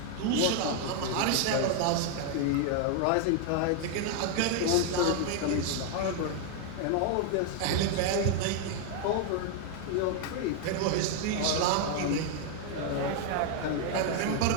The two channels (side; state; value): both; different; correlation 0.00